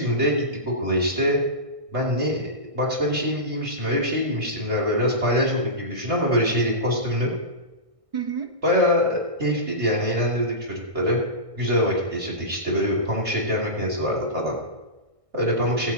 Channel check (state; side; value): late; left; 1.6 ms